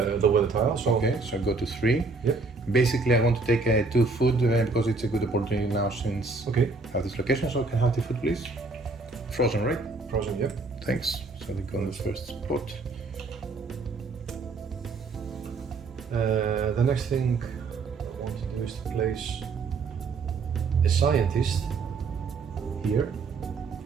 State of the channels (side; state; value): left; quieter; 3.9 dB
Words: the weather tile. So okay. So I go to 3. Yep. Basically, I want to take 2 food because it's a good opportunity now since Okay. I have this location. So can I have 2 food, please? Frozen, right? Frozen. Yep. Thanks. So they go on the first spot. The next thing I want to do is to place a scientist here.